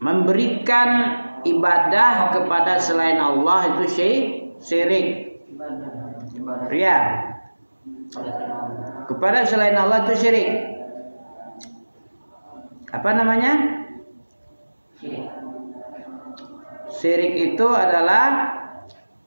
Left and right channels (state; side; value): inverted; both; correlation -1.00